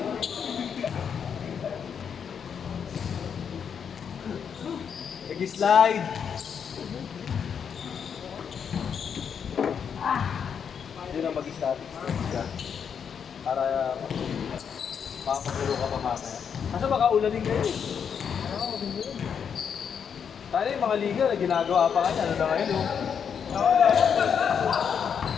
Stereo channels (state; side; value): quieter; right; 7.3 dB